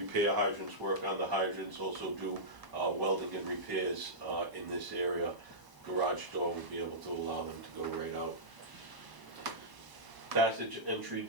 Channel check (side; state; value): left; late; 1.0 ms